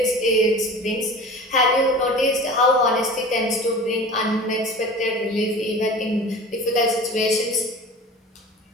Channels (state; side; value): normal; both; correlation 0.38